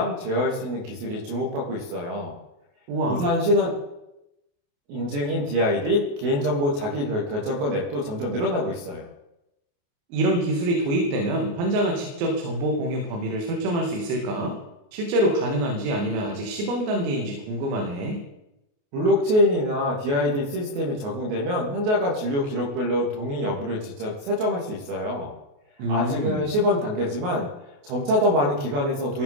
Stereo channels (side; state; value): left; late; 28 ms